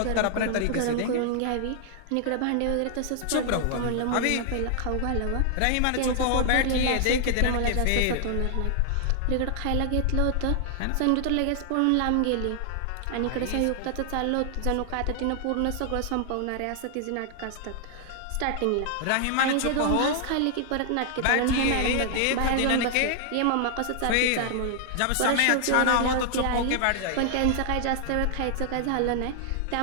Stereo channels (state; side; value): different; both; correlation 0.00